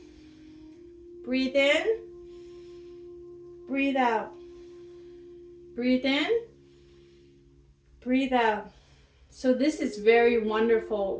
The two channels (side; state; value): both; identical; correlation 1.00